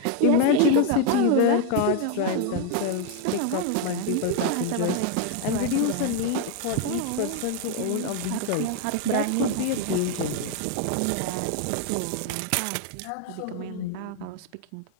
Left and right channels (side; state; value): both; different; correlation 0.01